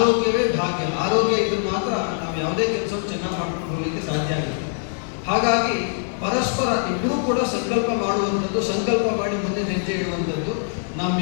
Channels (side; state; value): right; silent; digital silence